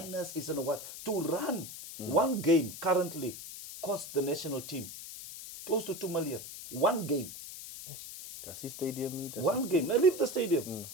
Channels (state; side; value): noise; left; hiss, 11 dB below the sound